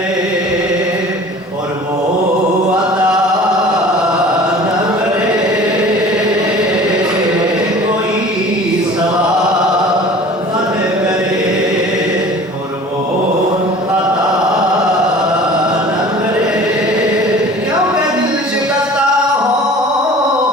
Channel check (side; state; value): both; normal; correlation 0.44